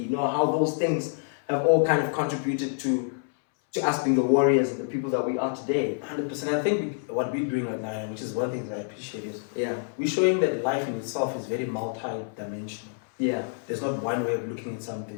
you know, how those things have all kind of contributed to us being the warriors and the people that we are today. 100%. I think what we're doing right now, which is one thing that I appreciate, is we're showing that life in itself is very multi-dimensional. Yeah. There's not one way of looking at something.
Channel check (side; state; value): right; silent; 60 dB below the other